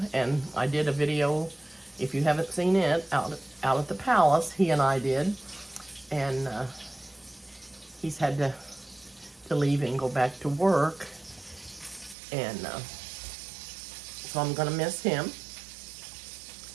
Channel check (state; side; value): drops out; left; at 12.2 s